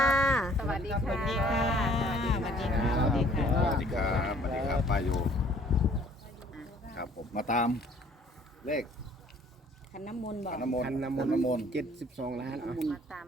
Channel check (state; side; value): normal; both; correlation 0.57